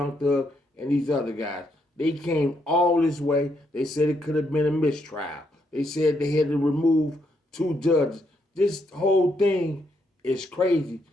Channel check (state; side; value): normal; both; correlation 0.76